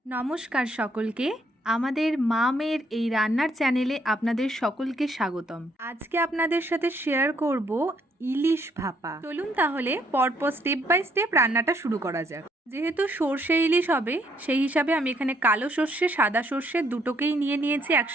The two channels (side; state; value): both; normal; correlation 0.70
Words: নমস্কার সকলকে। আমাদের মামের এই রান্নার চ্যানেলে আপনাদের সকলকে স্বাগতম। আজকে আপনাদের সাথে শেয়ার করব ইলিশ ভাপা। চলুন তাহলে পরপর স্টেপ বাই স্টেপ রান্নাটা শুরু করা যাক। যেহেতু সর্ষে ইলিশ হবে সেই হিসাবে আমি এখানে কালো সর্ষে সাদা সর্ষে দুটোকেই নিয়ে নিয়েছি